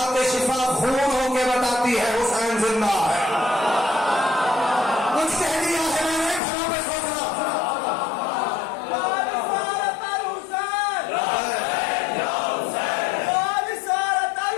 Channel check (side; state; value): right; drops out; at 6.4 s